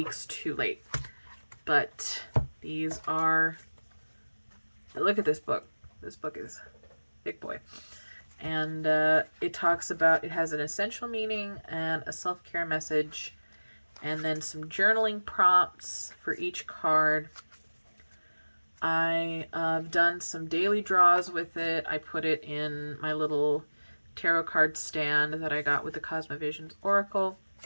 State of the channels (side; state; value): both; inverted; correlation -1.00